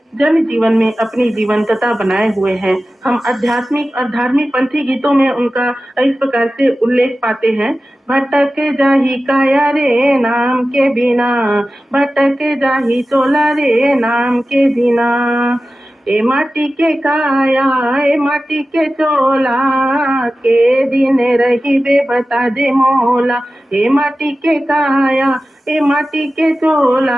जन जीवन में अपनी जीवंतता बनाए हुए हैं। हम आध्यात्मिक और धार्मिक पंथी गीतों में उनका इस प्रकार से उल्लेख पाते हैं। भटक जाही काया रे नाम के बिना, भटक जाही चोला रे नाम के बिना, ए माटी के काया ए माटी के चोला, के दिन रही बे बता दे मोला, ए माटी के काया ए माटी के चोला,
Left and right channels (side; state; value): both; normal; correlation 0.95